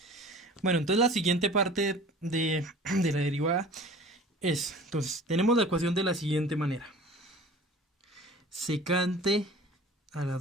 Bueno, entonces la siguiente parte de la derivada es, entonces, tenemos la ecuación de la siguiente manera. Secante a la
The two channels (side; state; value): both; normal; correlation 0.43